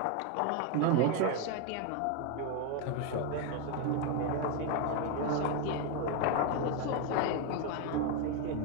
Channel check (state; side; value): different; both; correlation 0.01